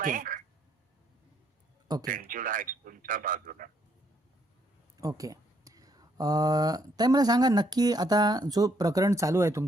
Okay. सेंच्युड हायस्कूलच्या बाजूला. ओके. ताई मला सांगा नक्की आता जो प्रकरण चालू आहे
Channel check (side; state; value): both; normal; correlation 0.71